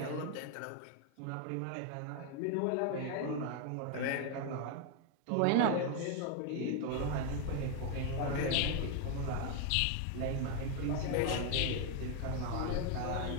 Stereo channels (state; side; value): different; both; correlation 0.00